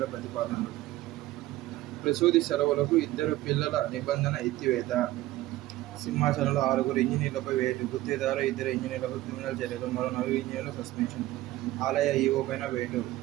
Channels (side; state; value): left; quieter; 16.5 dB